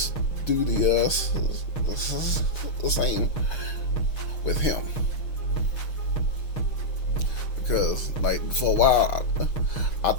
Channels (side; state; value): right; late; 6.8 ms